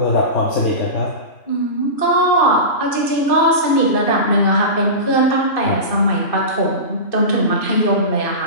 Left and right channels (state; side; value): late; right; 2.6 ms